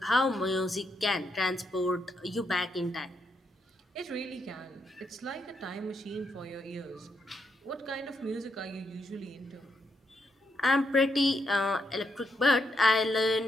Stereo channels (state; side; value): normal; both; correlation 0.80